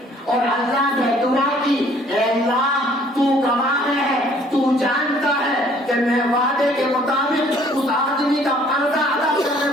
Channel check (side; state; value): both; normal; correlation 0.58